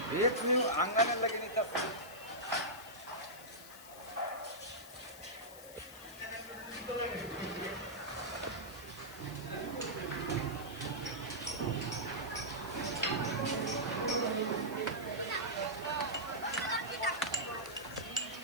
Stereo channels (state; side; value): noise; left; hiss, 16 dB below the sound